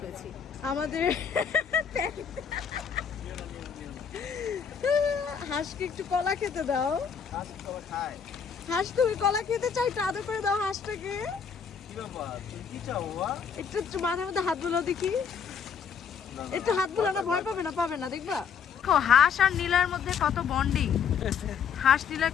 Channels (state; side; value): quieter; right; 6.8 dB